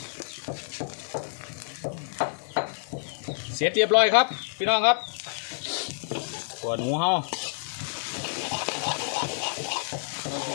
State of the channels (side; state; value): right; silent; 59 dB below the other